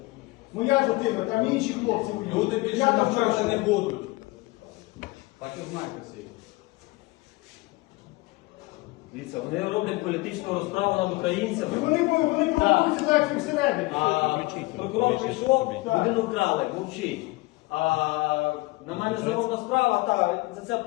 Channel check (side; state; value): right; quieter; 22.5 dB